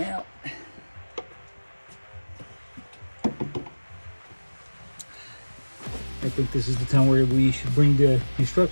out. I think this is the time where we should bring the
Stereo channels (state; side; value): inverted; both; correlation -1.00